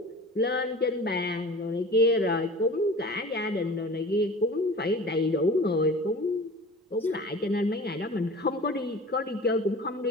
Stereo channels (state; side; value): normal; both; correlation 0.39